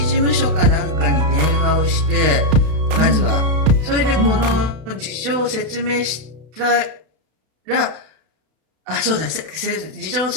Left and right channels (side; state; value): left; late; 32 ms